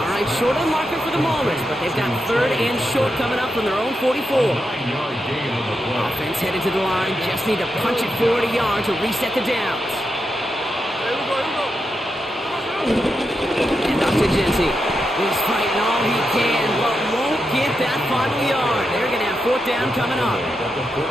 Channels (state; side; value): normal; both; correlation 0.86